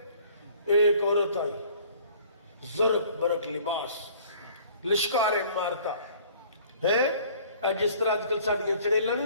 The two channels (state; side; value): inverted; both; correlation -0.52